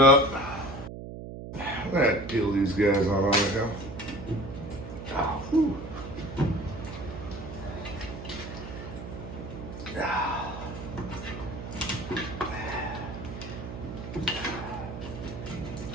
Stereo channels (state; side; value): noise; right; hum, 9 dB below the sound